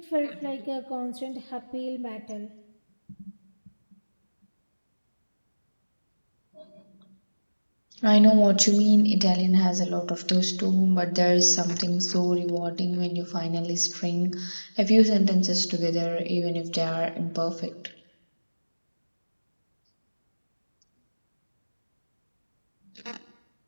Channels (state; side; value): inverted; both; correlation -1.00